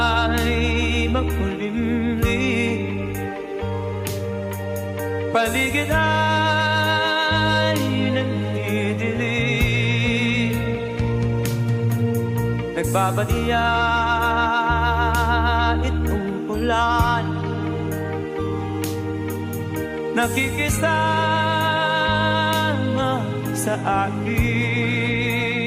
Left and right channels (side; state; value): both; identical; correlation 1.00